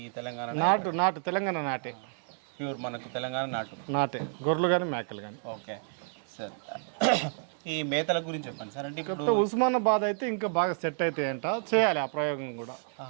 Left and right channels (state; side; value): silent; left; 58 dB below the other